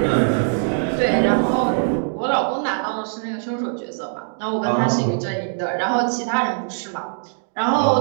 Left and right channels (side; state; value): left; silent; digital silence